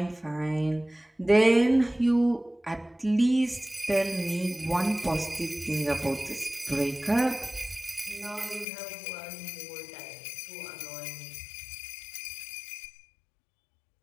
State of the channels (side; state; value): right; drops out; at 8.7 s